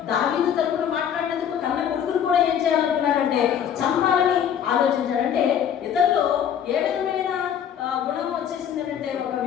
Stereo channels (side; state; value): right; quieter; 9.0 dB